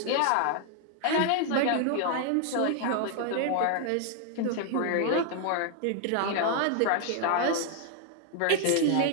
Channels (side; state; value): both; different; correlation 0.00